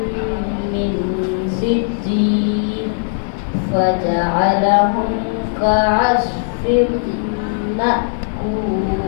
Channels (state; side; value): silent; right; 67 dB below the other